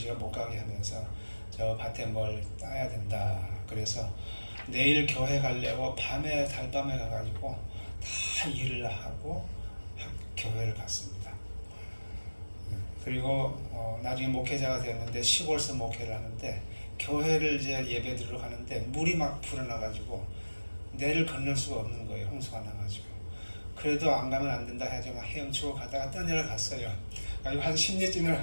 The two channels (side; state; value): both; inverted; correlation -1.00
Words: 못 가게 하면서 저 밭에 뭘 따야 된다. 그래서 내일 교회 가려고 밤에 달밤에 가가지고 다 일을 하고 교회를 갔습니다. 그리고 나중에 목회자가 되었는데 시골서 목회를 하는데 교회를 이제 예배 드리러 가는데 물이 막 불어나가지고 내를 건널 수가 없는 거예요. 홍수가 나가지고. 그래도 안 가면 안 된다 해서 막 헤엄치고 가다가 떠내려갔어요. 그리고 한